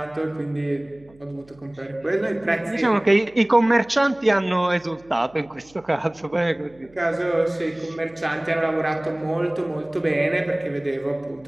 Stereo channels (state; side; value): noise; right; hum, 28 dB below the sound